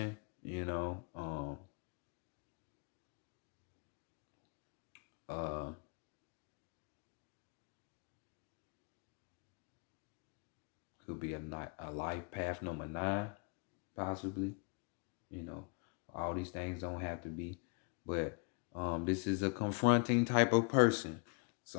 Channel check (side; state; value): right; quieter; 36.0 dB